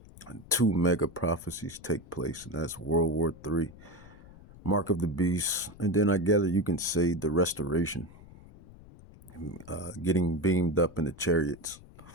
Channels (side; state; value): left; noise; rumble, 20 dB below the sound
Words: 2 mega prophecies take place, and that's World War III, Mark of the Beast, and then I gather you can say the restoration, getting beamed up in the chariots.